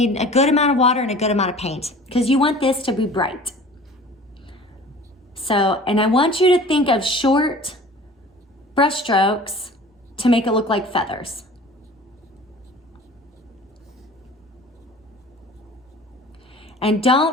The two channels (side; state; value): both; normal; correlation 0.44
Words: a good amount of water and a good amount of paint because you want this to be bright. So, and I want you to think of short brush strokes to make it look like feathers. And